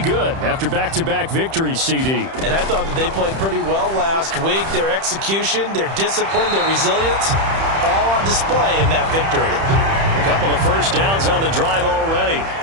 after back-to-back victories, CD. And I thought that they played pretty well last week. Their execution, their discipline, their resilience, all on display in that victory. A couple of first downs on the drive already,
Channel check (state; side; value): late; left; 31 ms